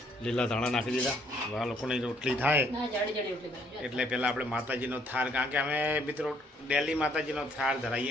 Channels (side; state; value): both; normal; correlation 0.67